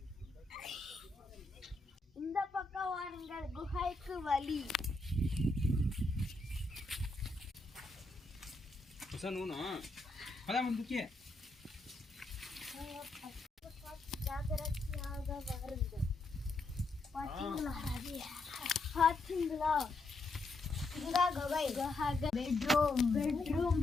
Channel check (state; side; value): quieter; right; 3.1 dB